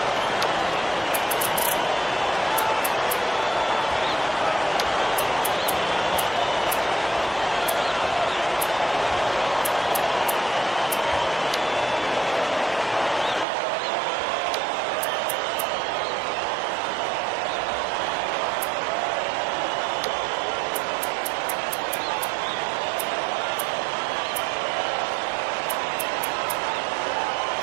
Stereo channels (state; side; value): drops out; left; at 13.5 s